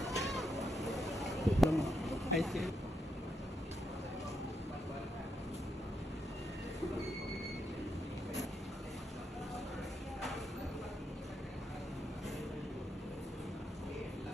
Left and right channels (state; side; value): normal; both; correlation 0.81